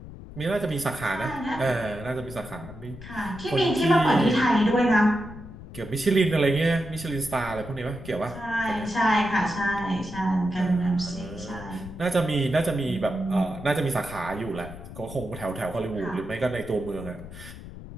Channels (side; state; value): left; noise; rumble, 13 dB below the sound